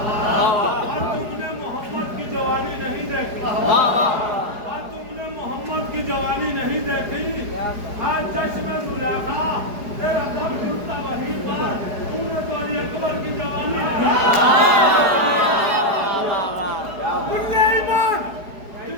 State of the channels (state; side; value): late; left; 4.8 ms